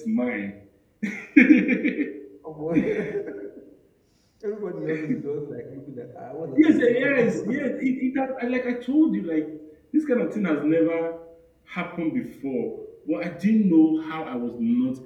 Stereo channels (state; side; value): identical; both; correlation 1.00